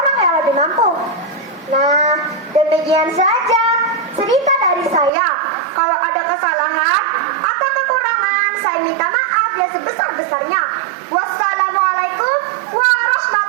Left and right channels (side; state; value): left; drops out; at 5.1 s